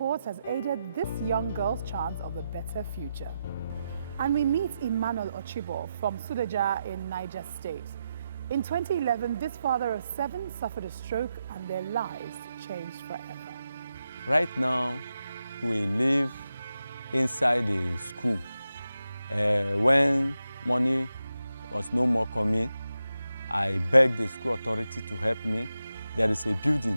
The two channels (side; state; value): both; inverted; correlation -0.88